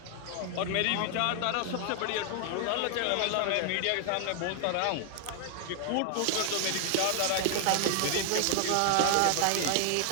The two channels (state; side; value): different; both; correlation 0.00